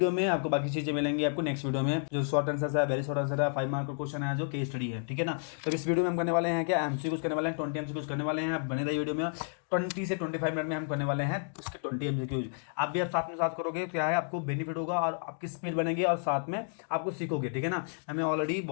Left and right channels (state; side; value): silent; right; digital silence